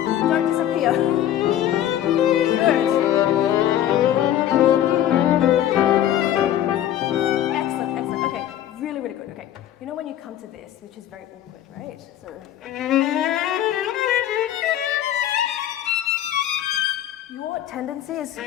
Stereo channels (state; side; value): quieter; right; 11.7 dB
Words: Don't disappear. Good. Excellent. Okay, really, really good. Okay, when you come to this, which is very awkward, right? So. Your tendency is